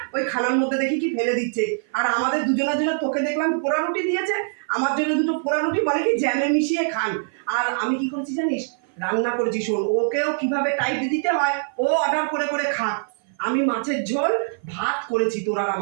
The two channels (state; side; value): silent; left; 56 dB below the other